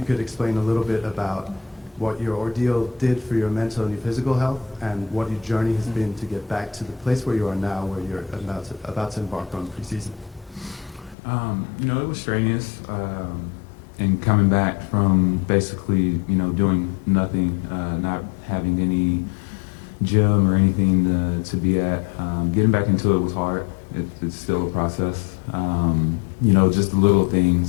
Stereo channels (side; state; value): right; drops out; at 11.2 s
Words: could explain a little bit about what your ordeal did for your mental and your physical health, and what your journey has been to get back to the place where you are now, where you're about to embark on preseason. You know, it was strenuous. And coming back from basically, you know, doing nothing, not having any gym or anything to be at, getting back into it was hard. It's still a process. You know, just the little